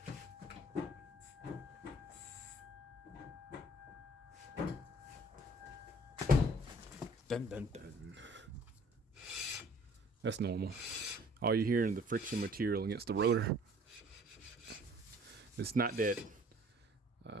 Dun, dun, dun. That's normal. All you hear is the friction material against the rotor. It's not that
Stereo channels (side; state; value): both; normal; correlation 0.55